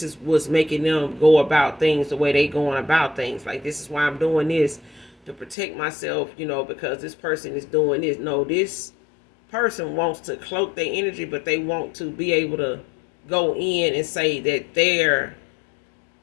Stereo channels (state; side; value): drops out; right; at 5.6 s